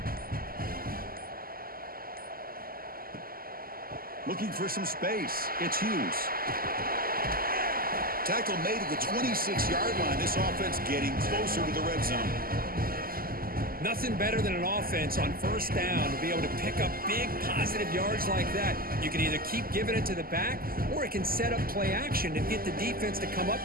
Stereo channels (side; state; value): left; late; 0.42 ms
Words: Looking for some space. It's Hughes. Tackle made at the 26-yard line. This offense getting closer to the red zone. Nothing better than an offense on first down to be able to pick up big positive yards like that. You can either keep giving it to the back, or it can set up play action to get the defense to come up